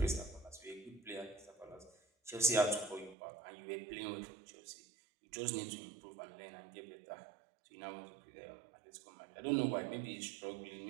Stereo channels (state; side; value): drops out; left; at 3.2 s